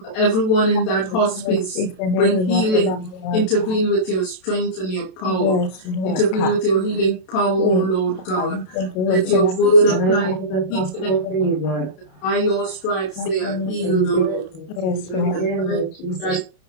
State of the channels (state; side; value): late; right; 32 ms